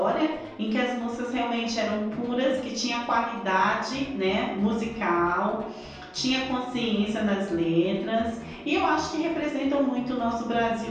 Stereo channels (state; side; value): identical; both; correlation 1.00